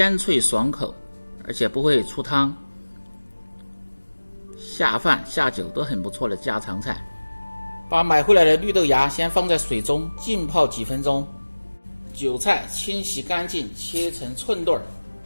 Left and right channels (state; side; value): inverted; both; correlation -1.00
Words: 脆爽口，而且不会出汤，下饭下酒都很不错的家常菜。把买回来的绿豆芽先放在水中浸泡几分钟，韭菜清洗干净，切成寸段。